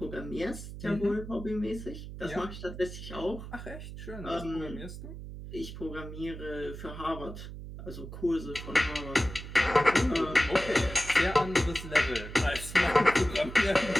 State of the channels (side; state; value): right; noise; hum, 10 dB below the sound